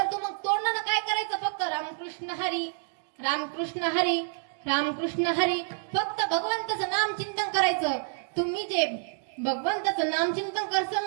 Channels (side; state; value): left; silent; 58 dB below the other